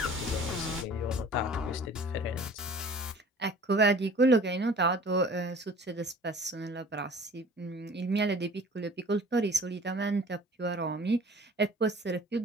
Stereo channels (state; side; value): normal; both; correlation 0.47